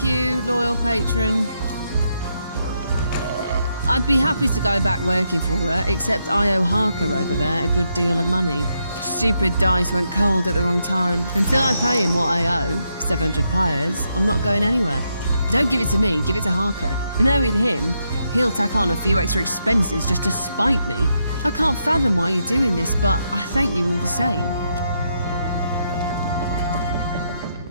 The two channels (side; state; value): both; inverted; correlation -0.80